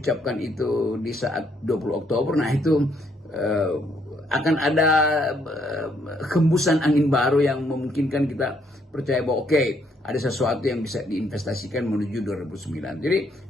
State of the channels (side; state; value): both; normal; correlation 0.70